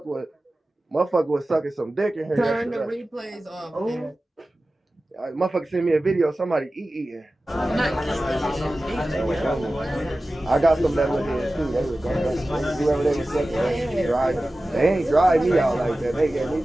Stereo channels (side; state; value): both; normal; correlation 0.96